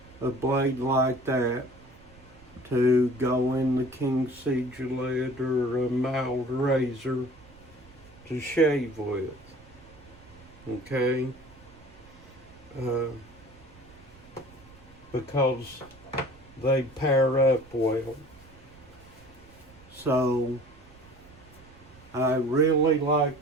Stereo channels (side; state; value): right; noise; rumble, 24 dB below the sound